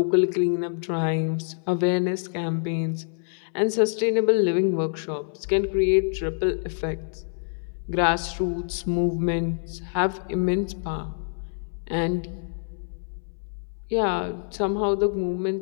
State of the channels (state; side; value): silent; right; 61 dB below the other